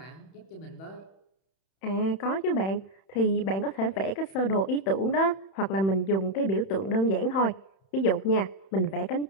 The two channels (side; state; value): right; late; 31 ms